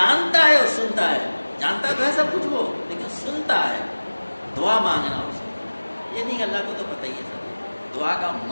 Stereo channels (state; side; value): inverted; both; correlation -1.00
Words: ہے اور سنتا ہے، جانتا تو ہے سب کچھ وہ، لیکن سنتا ہے۔ دعا مانگنا اس کو، یہ نہیں کہ اللہ کو تو پتہ ہی ہے سب، دعا کا